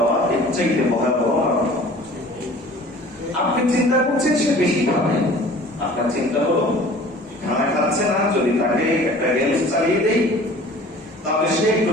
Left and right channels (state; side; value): normal; both; correlation 0.46